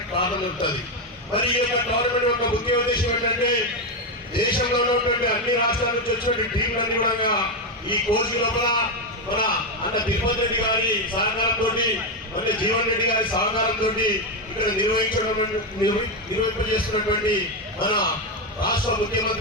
కారణం ఉంటుంది. మరి ఈ యొక్క టోర్నమెంట్ యొక్క ముఖ్య ఉద్దేశం ఏంటంటే దేశంలో ఉన్నటువంటి అన్ని రాష్ట్రాల నుంచి వచ్చినటువంటి టీంలన్నీ కూడా ఈ కోచ్ లోపల మన అన్న తిరుపతి రెడ్డి గారి సహకారంతో అంటే జీవన్ రెడ్డి గారి సహకారంతో ఇక్కడ నిర్వహింపజేస్తున్నటువంటి మన రాష్ట్ర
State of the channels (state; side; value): normal; both; correlation 0.08